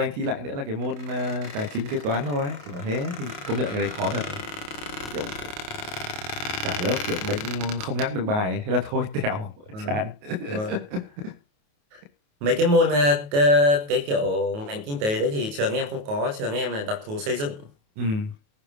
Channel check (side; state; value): left; late; 28 ms